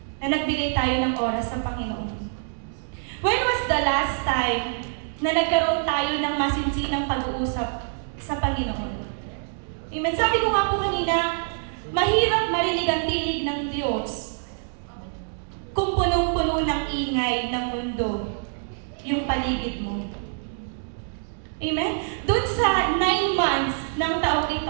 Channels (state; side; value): silent; left; digital silence